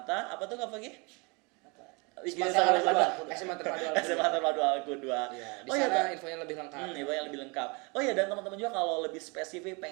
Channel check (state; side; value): quieter; left; 29.9 dB